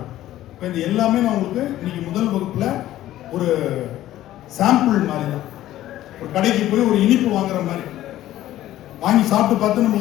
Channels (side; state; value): right; quieter; 14.0 dB